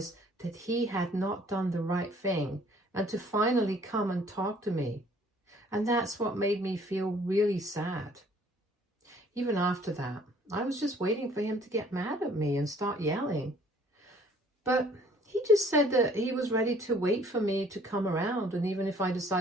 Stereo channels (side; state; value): both; normal; correlation 0.58